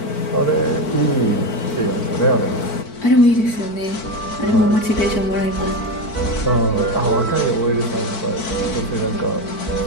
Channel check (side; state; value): right; late; 4.5 ms